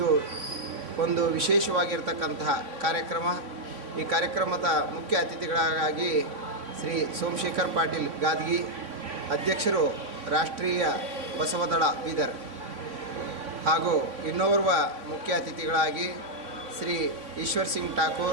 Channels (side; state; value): left; late; 3.4 ms